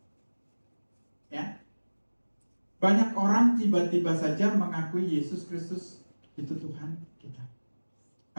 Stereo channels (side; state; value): both; inverted; correlation -1.00